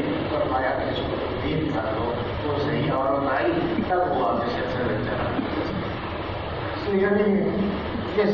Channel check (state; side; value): identical; both; correlation 1.00